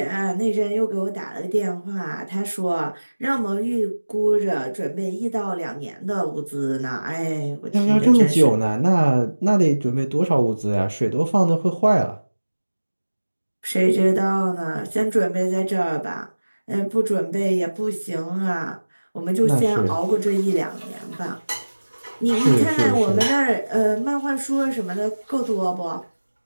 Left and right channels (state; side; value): inverted; both; correlation -1.00